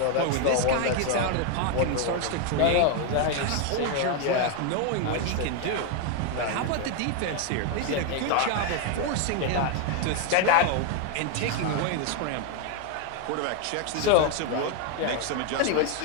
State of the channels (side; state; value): both; different; correlation 0.01